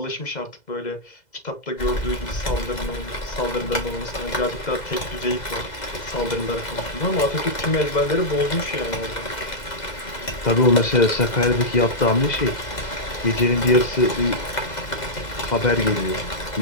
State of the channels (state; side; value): late; right; 2.0 ms